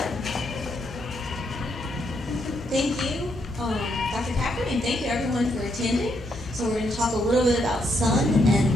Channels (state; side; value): normal; both; correlation 0.76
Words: Thank you, Dr. Packard, and thank you everyone for attending. So we're going to talk a little bit about sun